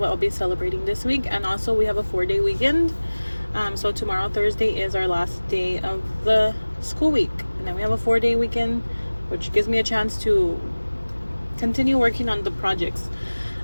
I'll be celebrating this week. And also, we have a 4-day weekend. So tomorrow, Thursday, is our last day of the school week. And then we have a 4-day weekend, which gives me a chance to continue working on the projects.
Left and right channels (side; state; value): both; inverted; correlation -1.00